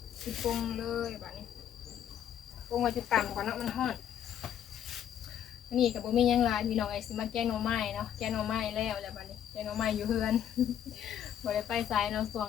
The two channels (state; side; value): quieter; right; 9.9 dB